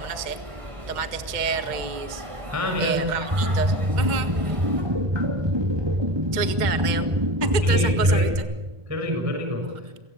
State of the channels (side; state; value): left; late; 2.1 ms